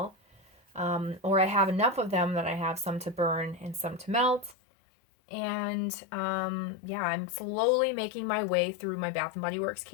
Or I have enough of them that I have some to burn and some to melt. And yeah, I'm slowly making my way through my Bath & Body Works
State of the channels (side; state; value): right; drops out; at 4.5 s